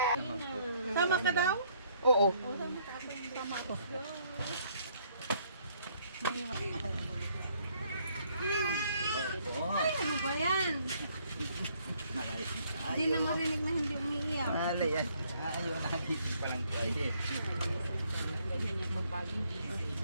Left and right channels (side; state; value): both; inverted; correlation -0.66